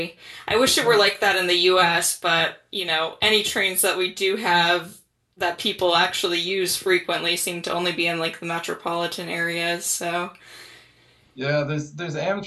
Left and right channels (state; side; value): identical; both; correlation 1.00